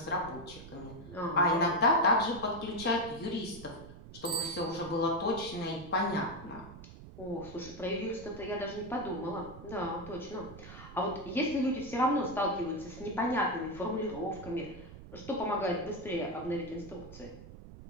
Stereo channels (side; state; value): right; noise; rumble, 15 dB below the sound